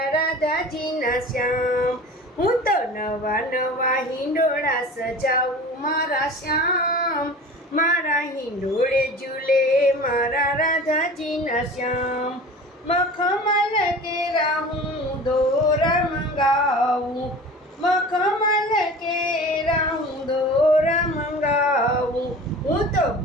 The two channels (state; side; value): normal; both; correlation 0.39